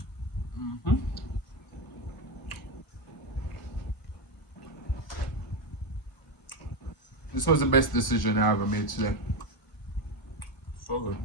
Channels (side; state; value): right; late; 1.0 ms